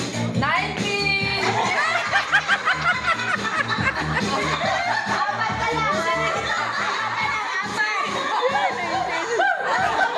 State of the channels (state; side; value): identical; both; correlation 1.00